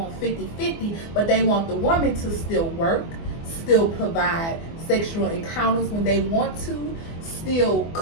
50-50, but they want the woman to still work, still provide sexual encounters when they want to, still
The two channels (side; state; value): right; late; 24 ms